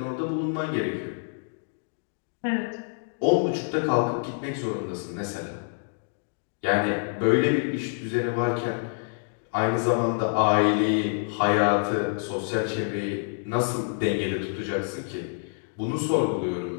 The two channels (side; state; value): right; silent; digital silence